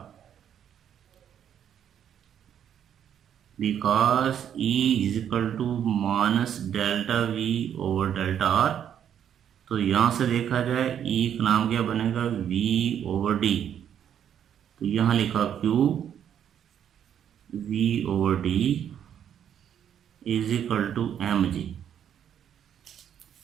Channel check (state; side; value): quieter; left; 9.3 dB